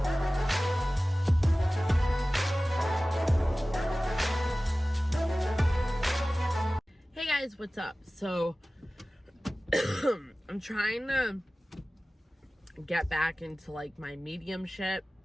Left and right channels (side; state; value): both; normal; correlation 0.97